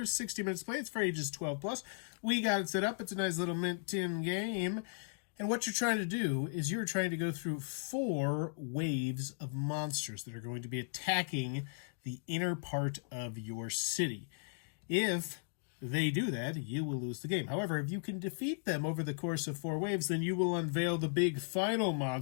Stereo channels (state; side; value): silent; right; digital silence